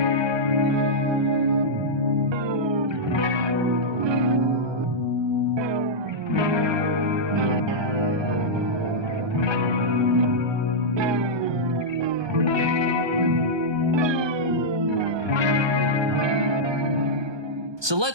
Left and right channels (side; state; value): left; late; 1.2 ms